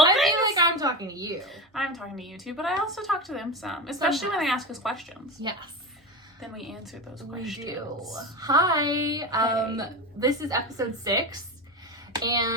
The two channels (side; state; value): both; normal; correlation 0.22